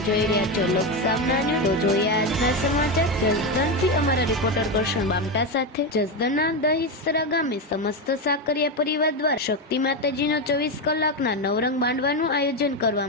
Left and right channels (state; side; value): normal; both; correlation 0.12